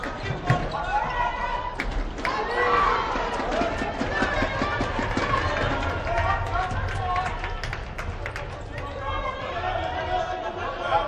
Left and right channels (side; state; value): both; identical; correlation 1.00